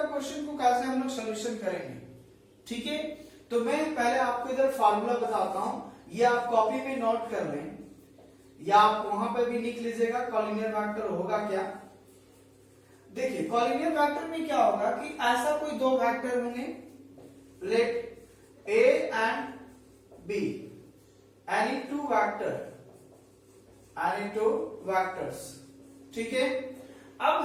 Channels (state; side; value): identical; both; correlation 1.00